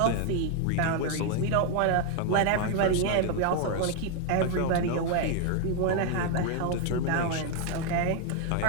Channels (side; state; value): both; different; correlation 0.01